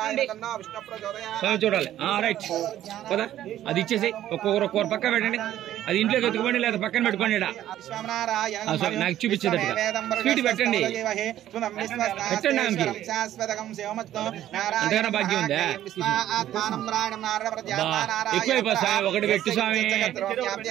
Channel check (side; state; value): left; quieter; 12.4 dB